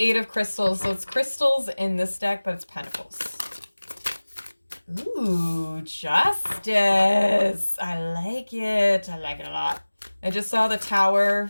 8 of crystals, so it's crystals in this deck, but it's pentacles. Ooh, justice. I like it. I like it a lot. I just saw the tower,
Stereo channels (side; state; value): both; inverted; correlation -1.00